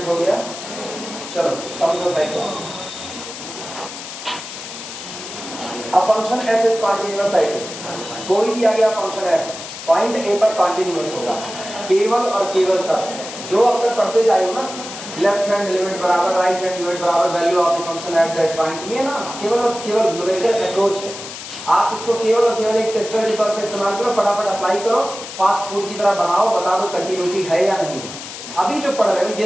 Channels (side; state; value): left; noise; hiss, 11 dB below the sound